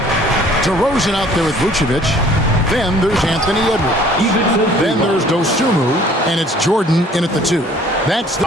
DeRozan out there with Vucevic. Then there's Anthony Edwards. Then there's Dosunmu. And it's Jordan in at the 2. That's the...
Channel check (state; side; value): normal; both; correlation 0.55